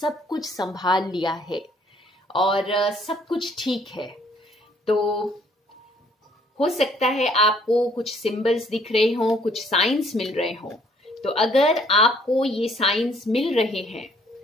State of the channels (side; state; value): both; normal; correlation 0.62